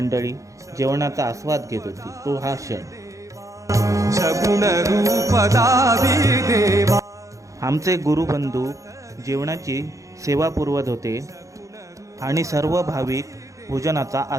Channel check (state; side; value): late; left; 0.15 ms